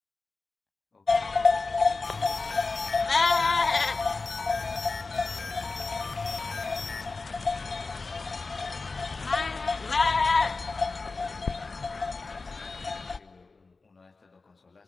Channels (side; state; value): right; quieter; 3.9 dB